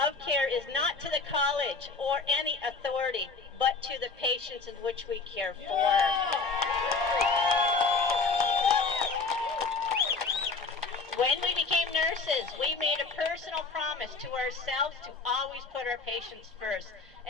of care is not to the college or any authority, but to the patients in which we care for. When we became nurses, we made a personal promise to ourselves to always put our patients first,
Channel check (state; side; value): quieter; right; 4.3 dB